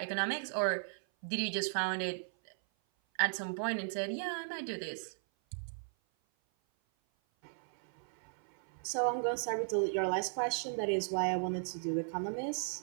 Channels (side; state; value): left; silent; 54 dB below the other